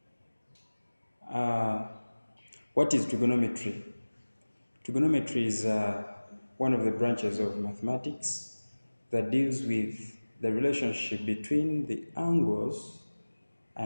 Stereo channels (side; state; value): both; inverted; correlation -1.00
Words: What is trigonometry? Trigonometry is one of the branches of mathematics that deals with the relationship between the angles